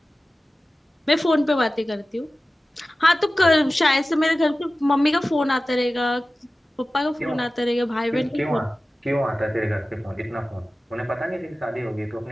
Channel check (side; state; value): both; normal; correlation 0.96